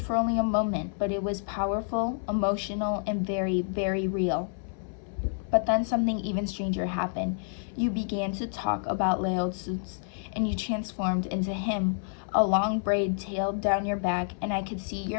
for only a moment, but it was powerful, emotional, and very, very real. But then something even stranger happened. You began to talk about Lao Tzu, and you transformed into him. A long braid tailed down your back, and I could see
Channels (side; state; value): right; silent; 59 dB below the other